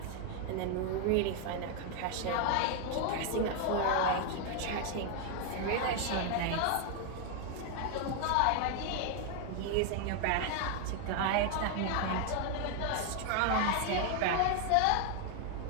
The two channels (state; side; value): different; both; correlation 0.00